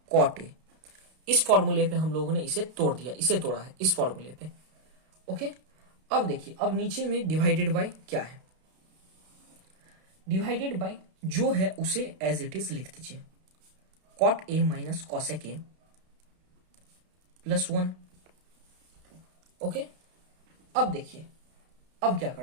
cot A. इस फॉर्मूले पे हम लोगों ने इसे तोड़ दिया, इसे तोड़ा है इस फॉर्मूले पे। ओके, अब देखिए अब नीचे में डिवाइडेड बाय क्या है, डिवाइडेड बाय जो है उसे एज इट इज लिख दीजिए, cot A minus cosec A plus 1। Okay, अब देखिए अब क्या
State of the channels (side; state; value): left; late; 32 ms